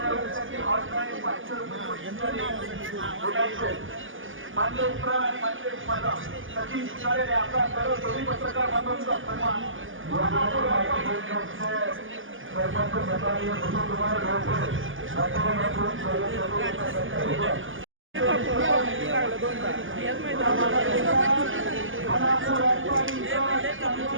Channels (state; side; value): late; left; 0.58 ms